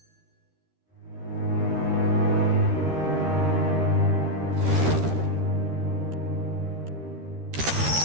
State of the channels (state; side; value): late; left; 13 ms